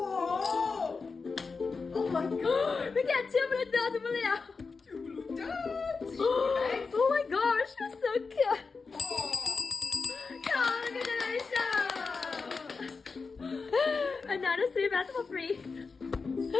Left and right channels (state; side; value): quieter; right; 4.6 dB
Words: Oh my god. We got 2 blue dots, Mulian. Two blue dots. Oh my gosh, it's so cute. Oh. Congratulations! Another 3 bags for free.